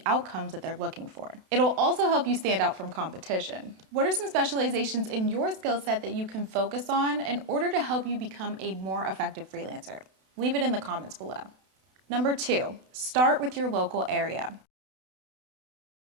outcomes that they're looking for. It'll also help you stand out from competition. What are some specializations in your skill set that you can focus on in order to help you become a more effective freelancer? Leave it in the comments below. Number 2, start with your local area.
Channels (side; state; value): left; late; 32 ms